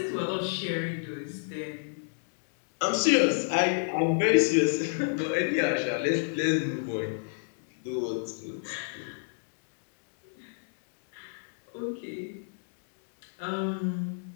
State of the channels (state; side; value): silent; right; digital silence